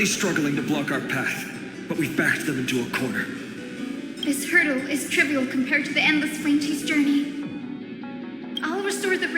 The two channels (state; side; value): identical; both; correlation 1.00